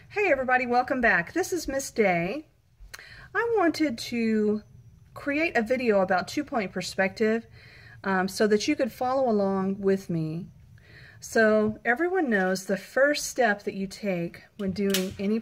Hey everybody, welcome back. This is Miss Day. I wanted to create a video about two-point perspective so that you could follow along with me. So everyone knows the first step that you take when doing any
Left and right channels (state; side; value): identical; both; correlation 1.00